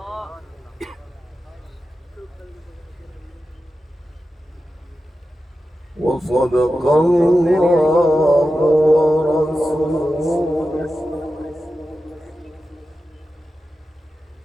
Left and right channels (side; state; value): both; normal; correlation 0.92